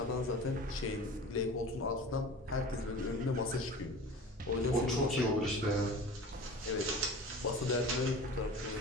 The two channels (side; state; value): both; normal; correlation 0.37